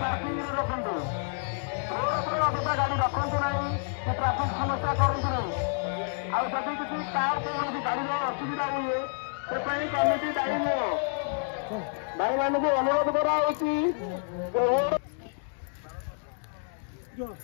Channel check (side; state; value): right; silent; 59 dB below the other